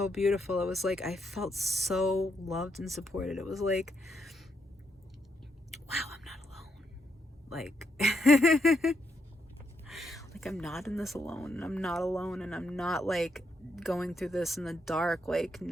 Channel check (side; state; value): both; normal; correlation 0.79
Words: beautiful. It was like I felt so loved and supported. It was like, wow, I'm not alone. Like, like I'm not in this alone, and I'm not alone, and I'm not like going through this in the dark, like